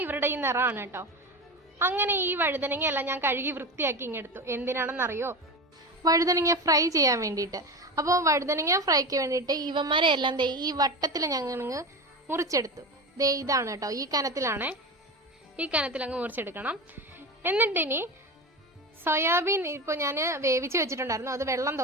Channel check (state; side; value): normal; both; correlation 0.25